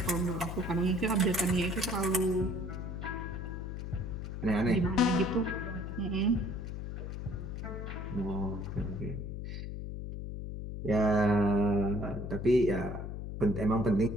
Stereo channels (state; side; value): noise; left; hum, 6 dB below the sound